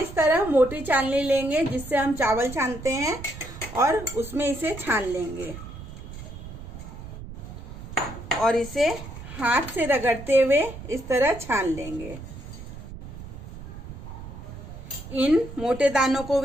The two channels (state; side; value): noise; right; rumble, 12 dB below the sound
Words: इस तरह मोटी चालनी लेंगे जिससे हम चावल छानते हैं और उसमें इसे छान लेंगे और इसे हाथ से रगड़ते हुए इस तरह छान लेंगे। इन मोटे दानों को